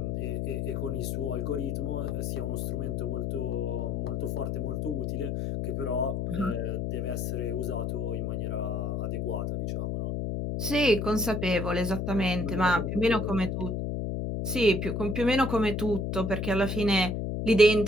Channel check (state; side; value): noise; left; hum, 1 dB below the sound